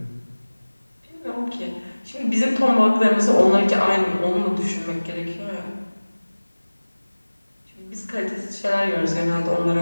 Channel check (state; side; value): inverted; both; correlation -1.00